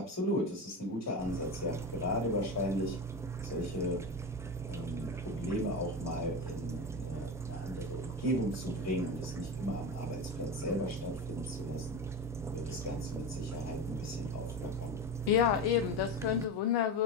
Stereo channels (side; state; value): both; normal; correlation 0.22